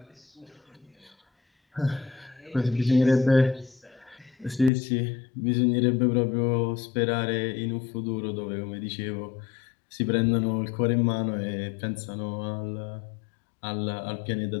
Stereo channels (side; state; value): right; drops out; at 4.7 s